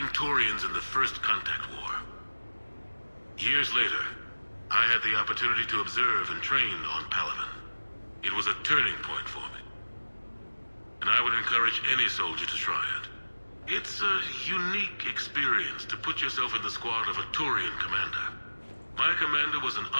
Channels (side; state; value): both; inverted; correlation -1.00